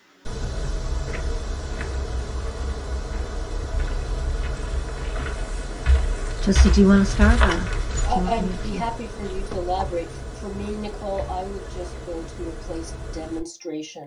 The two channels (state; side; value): identical; both; correlation 1.00